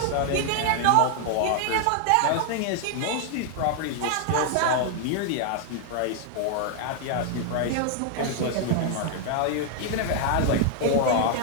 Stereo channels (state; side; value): different; both; correlation 0.00